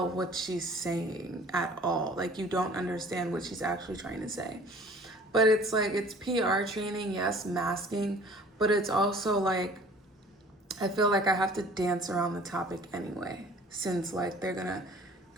what she's saying at all. Like, you don't understand what she's actually trying to say. But it's like, it's PR training, yes, masking, but it's also like, I feel like I have to dance around the topic anyway, since like they're gonna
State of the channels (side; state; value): both; normal; correlation 0.50